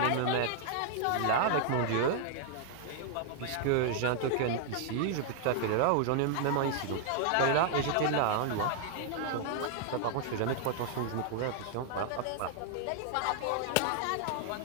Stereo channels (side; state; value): both; different; correlation -0.01